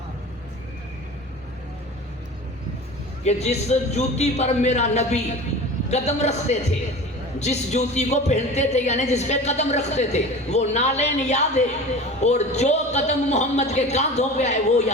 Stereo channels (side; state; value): both; normal; correlation 0.36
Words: کہ جس جوتی پر میرا نبی قدم رکھتے تھے، جس جوتی کو پہنتے تھے یعنی جس پہ قدم رکھتے تھے وہ نالین یاد ہے، اور جو قدم محمد کے کاندھوں پہ آئے وہ